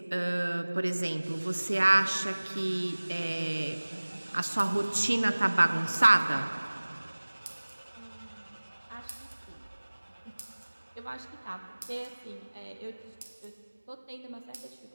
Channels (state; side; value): inverted; both; correlation -1.00